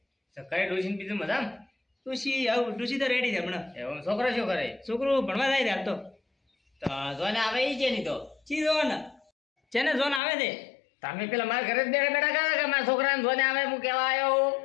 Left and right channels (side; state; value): right; drops out; at 10.2 s